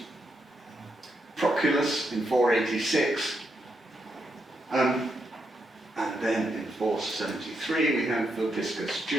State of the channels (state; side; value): normal; both; correlation 0.81